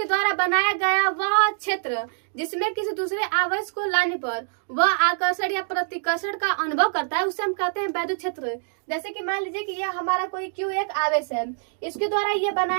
द्वारा बनाया गया वह क्षेत्र जिसमें किसी दूसरे आवेश को लाने पर वह आकर्षण या प्रतिकर्षण का अनुभव करता है, उसे हम कहते हैं वैद्युत क्षेत्र। जैसे कि मान लीजिए कि यह हमारा कोई Q1 आवेश है, इसके द्वारा यह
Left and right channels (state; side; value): silent; left; digital silence